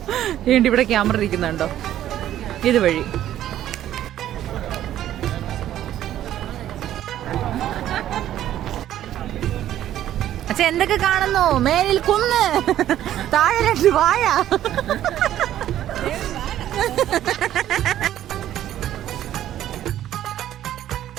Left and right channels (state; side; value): quieter; left; 12.2 dB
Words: വേണ്ടി ഇവിടെ ക്യാമറ ഇരിക്കുന്നുണ്ടോ, ഇതുവഴി. അച്ഛൻ എന്തൊക്കെ കാണുന്നു? മേലിൽ കുന്ന്, താഴെ 2 വാഴ.